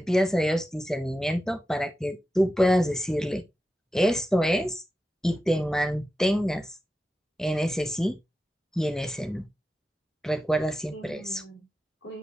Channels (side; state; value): both; normal; correlation 0.91